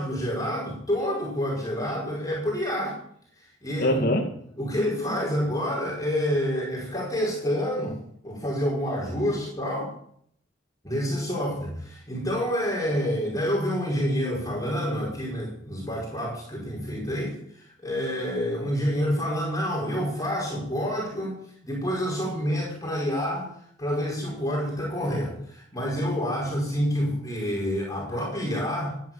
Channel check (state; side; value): normal; both; correlation 0.57